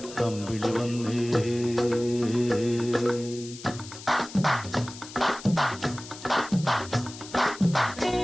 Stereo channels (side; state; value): left; noise; hiss, 15 dB below the sound